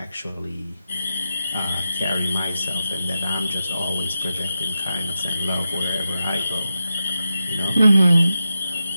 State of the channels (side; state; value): both; inverted; correlation -0.90